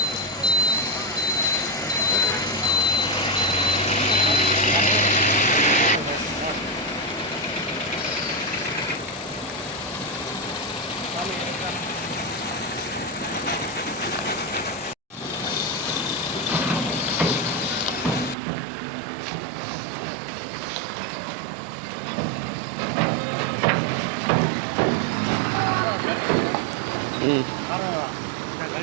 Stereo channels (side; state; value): left; drops out; at 18.4 s